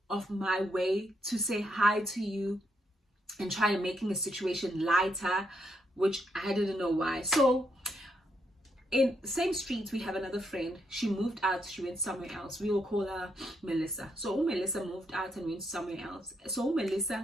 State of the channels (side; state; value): both; normal; correlation 0.77